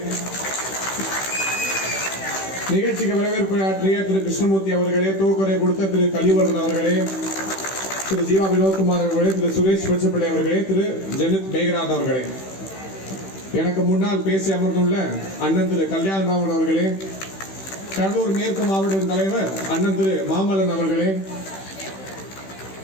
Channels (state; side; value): late; right; 16 ms